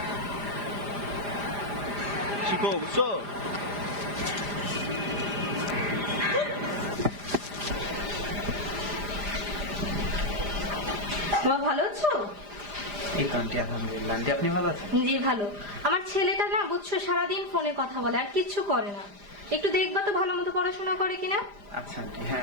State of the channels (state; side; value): late; left; 4.9 ms